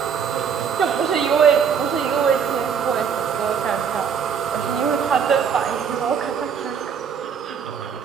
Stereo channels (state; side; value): quieter; left; 7.0 dB